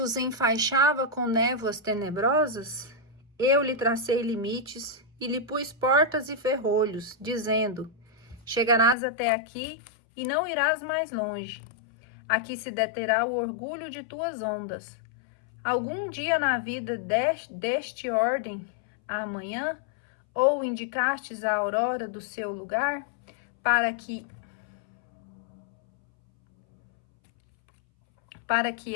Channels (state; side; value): drops out; right; at 9.0 s